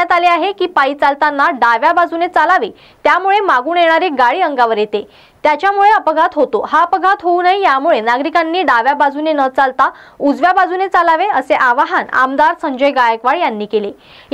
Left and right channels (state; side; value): identical; both; correlation 1.00